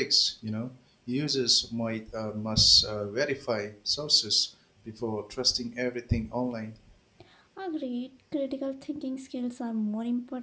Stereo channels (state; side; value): identical; both; correlation 1.00